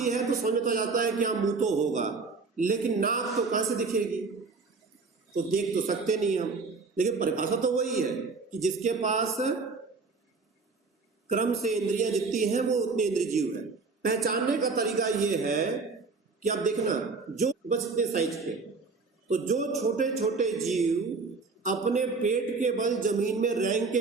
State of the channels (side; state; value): left; quieter; 4.3 dB